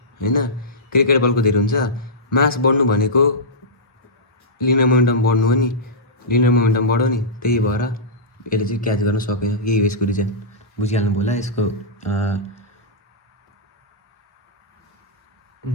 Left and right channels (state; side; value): normal; both; correlation -0.15